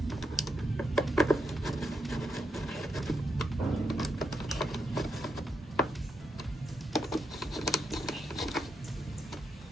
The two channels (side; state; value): both; normal; correlation 0.83